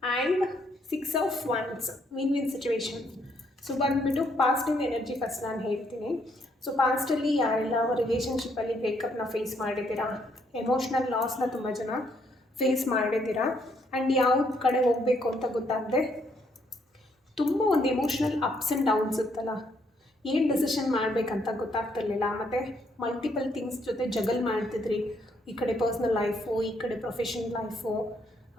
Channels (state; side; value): normal; both; correlation 0.71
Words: and 6 of wands, win situation. So ಬಂದುಬಿಟ್ಟು ಪಾಸ್ಟಿನ ಎನರ್ಜಿ ಫಸ್ಟ್ ನಾನು ಹೇಳ್ತೀನಿ. ಸೊ ಪಾಸ್ಟಲ್ಲಿ ಯಾರೆಲ್ಲ ರಿಲೇಷನ್ಶಿಪ್ಪಲ್ಲಿ ಬ್ರೇಕಪ್ನ ಫೇಸ್ ಮಾಡಿದ್ದೀರಾ, ಎಮೋಷ್ನಲ್ ಲಾಸ್ನ ತುಂಬ ಜನ ಫೇಸ್ ಮಾಡಿದ್ದೀರಾ, ಆ್ಯಂಡ್ ಯಾವ ಕಡೆ ಹೋಗಬೇಕು ಅಂತ ಗೊತ್ತಾಗದೆ ತುಂಬ ಒಂದು ಎಮೋಷ್ನಲ್ ಅಪ್ಸ್ ಆ್ಯಂಡ್ ಡೌನ್ಸ್ ಇತ್ತಲ್ಲ, ಏನು ಡೆಸಿಷನ್ ಮಾಡಬೇಕಂತ ಗೊತ್ತಾಗ್ತಿರ್ಲಿಲ್ಲ, ಮತ್ತು ಮಲ್ಟಿಪಲ್ ಥಿಂಗ್ಸ್ ಜೊತೆ ಜಗಲ್ ಮಾಡ್ತಿದ್ರಿ. ಈ ಕಡೆ ಪರ್ಸ್ನಲ್ ಲೈಫು, ಈ ಕಡೆ ಪ್ರೊಫೆಷನಲ್ ಲೈಫು,